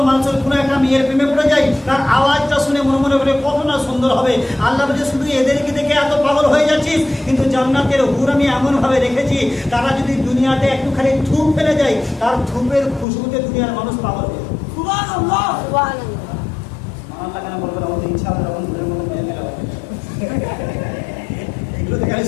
মানুষের কোনো একটা মেয়ের প্রেমে পড়ে যায়, তার আওয়াজটা শুনে মনে করে কত না সুন্দর হবে। আল্লাহ বলে, শুধু এদেরকে দেখে এত পাগল হয়ে যাচ্ছিস, কিন্তু জান্নাতের হুর আমি এমন ভাবে রেখেছি, তারা যদি দুনিয়াতে একটুখানি থুপ ফেলে যায়, তার থুপের খুশবুতে দুনিয়ার মানুষ পাগল হবে। সুবহানাল্লাহ। কেন বলবেন? আমাদের ইচ্ছা হবে তখন এগুলো দেখে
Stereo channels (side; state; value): right; drops out; at 13.1 s